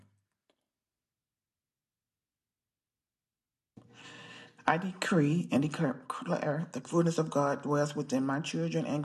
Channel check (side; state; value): both; identical; correlation 1.00